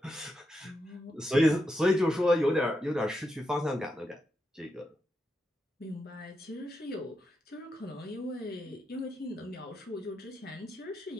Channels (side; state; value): both; normal; correlation 0.85